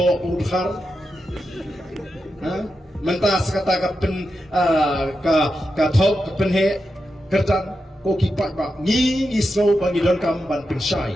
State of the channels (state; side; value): normal; both; correlation 0.88